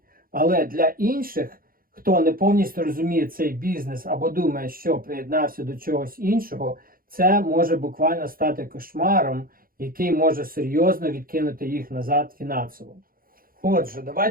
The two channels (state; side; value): late; left; 0.42 ms